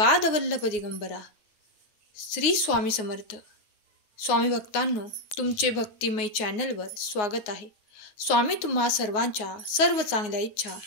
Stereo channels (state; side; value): late; right; 9.5 ms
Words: दिगंबरा. श्री स्वामी समर्थ. स्वामी भक्तांनो, तुमचे भक्तिमय चॅनलवर स्वागत आहे. स्वामी तुम्हा सर्वांच्या सर्व चांगल्या इच्छा